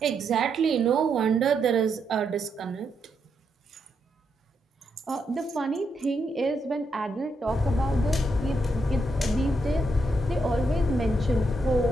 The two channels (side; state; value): both; normal; correlation 0.79